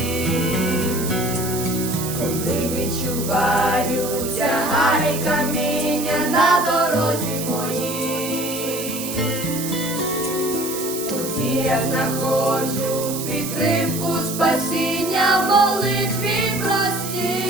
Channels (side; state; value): right; noise; hiss, 7 dB below the sound